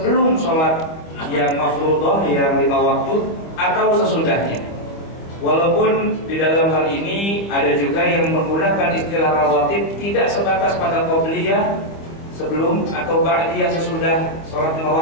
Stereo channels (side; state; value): right; late; 25 ms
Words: sholat yang mafruḍah, yang 5 waktu, atau sesudahnya. Walaupun di dalam hal ini ada juga yang menggunakan istilah rawatib tidak sebatas pada qobliyah sebelum atau ba'diyah sesudah sholat 5